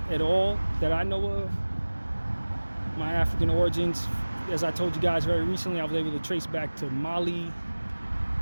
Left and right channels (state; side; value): inverted; both; correlation -1.00